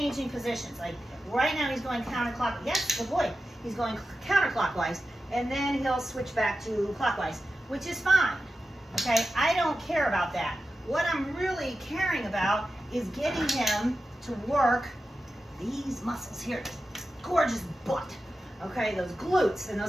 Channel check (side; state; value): both; normal; correlation 0.92